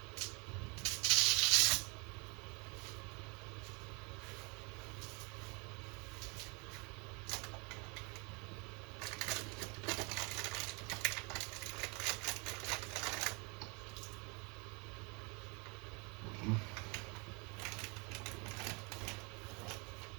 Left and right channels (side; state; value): left; quieter; 30.9 dB